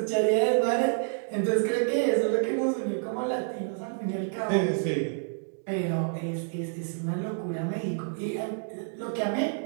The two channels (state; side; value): silent; left; digital silence